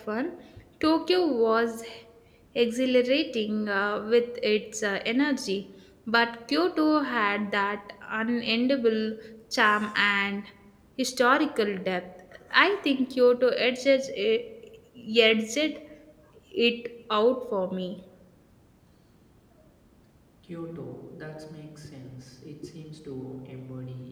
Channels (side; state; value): both; identical; correlation 1.00